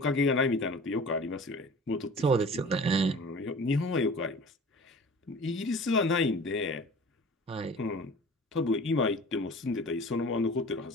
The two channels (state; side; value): normal; both; correlation 0.42